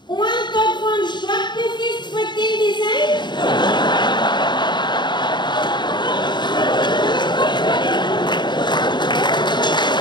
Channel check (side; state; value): right; late; 0.22 ms